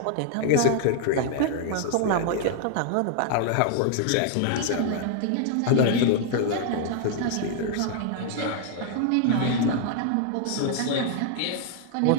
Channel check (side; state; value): both; different; correlation 0.00